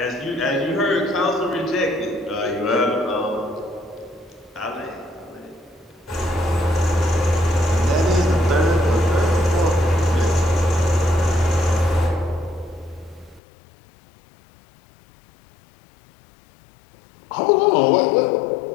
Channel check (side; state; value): right; drops out; at 13.4 s